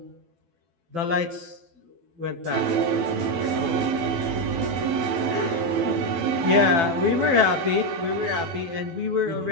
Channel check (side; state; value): left; late; 12 ms